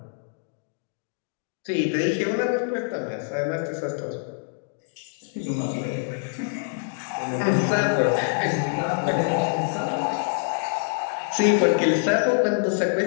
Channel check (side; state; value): right; silent; digital silence